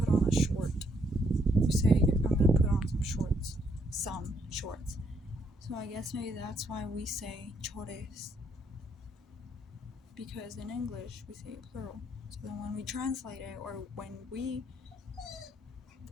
on a short. You say, I'm going to put on some shorts. Some shorts. So I guess maybe that's why we say chores. Because in English, we say it plural. So then when we translate it, or when the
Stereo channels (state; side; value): normal; both; correlation 0.72